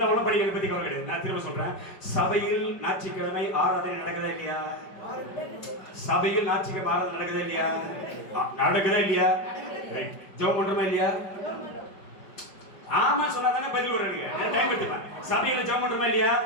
படிக்கிறத பத்தி கவலை கிடையாது. நான் திரும்ப சொல்றேன். சபையில் ஞாயிற்றுக்கிழமை ஆராதனை நடக்குதா இல்லையா? சபையில் ஞாயிற்றுக்கிழமை ஆராதனை நடக்குதா இல்லையா? நடக்குதா இல்லையா? ஜெபம் பண்றோமா இல்லையா? ஆமா சொன்னா தானே பதில் வருவாங்க. டைம் எடுத்துப்பேன். சபையில ஜெபம் பண்றோமா இல்லையா?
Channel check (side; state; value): right; late; 5.2 ms